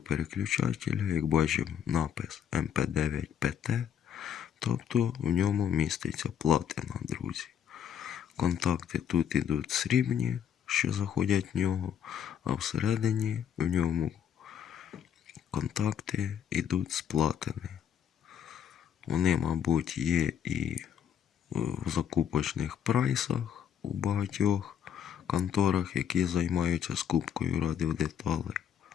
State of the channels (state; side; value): quieter; right; 8.8 dB